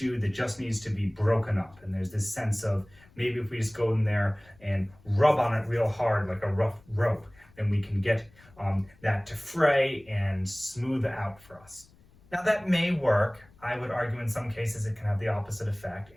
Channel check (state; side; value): noise; left; rumble, 28 dB below the sound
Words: that just needs to be broken up. And there's this sense of maybe if we just go in there and rub on it real hard like a rough rope, then we can get that to fray and smooth out for us. Now, that may work. I would argue in some cases it can have the opposite effect,